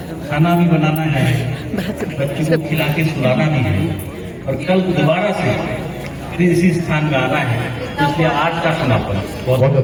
खाना भी बनाना है, बच्चों को खिला के सुलाना भी है और कल दोबारा से फिर इसी स्थान में आना है, तो इसलिए आज का समापन बहुत बहुत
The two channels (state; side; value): identical; both; correlation 1.00